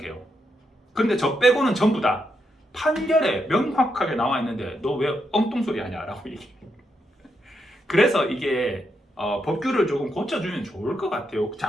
그런데 저 빼고는 전부 다 판결에 명확하게 나와 있는데 너 왜 엉뚱소리 하냐 라고 얘기해요. 그래서 이게 법규를 조금 고쳐주면 좋을 것 같아요.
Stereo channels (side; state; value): both; normal; correlation 0.81